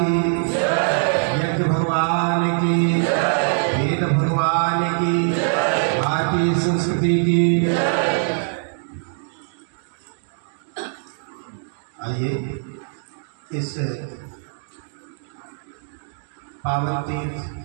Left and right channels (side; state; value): left; silent; digital silence